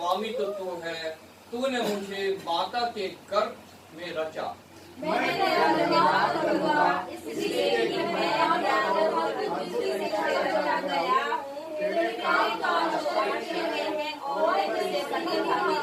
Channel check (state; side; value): identical; both; correlation 1.00